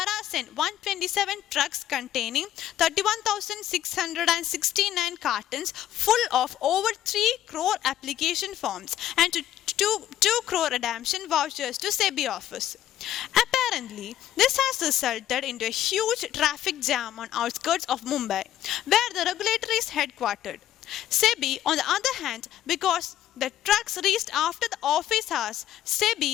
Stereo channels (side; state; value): right; quieter; 12.3 dB